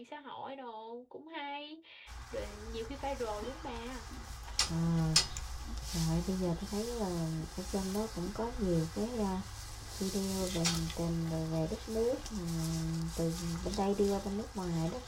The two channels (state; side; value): identical; both; correlation 1.00